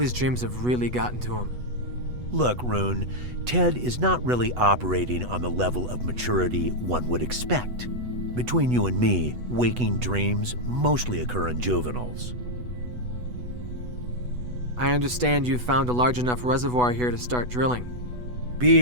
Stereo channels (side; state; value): left; late; 8.1 ms